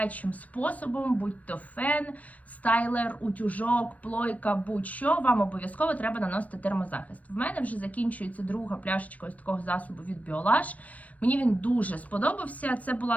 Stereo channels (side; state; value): right; late; 0.070 ms